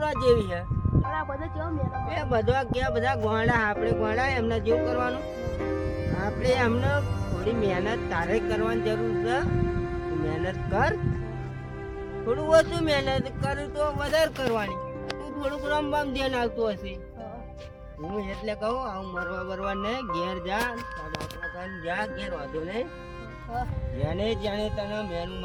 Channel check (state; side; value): identical; both; correlation 1.00